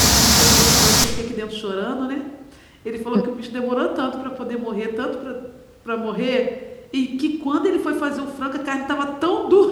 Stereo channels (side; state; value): both; identical; correlation 1.00